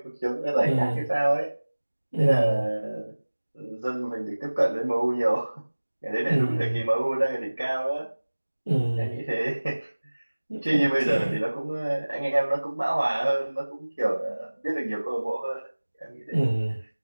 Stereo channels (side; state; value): both; inverted; correlation -1.00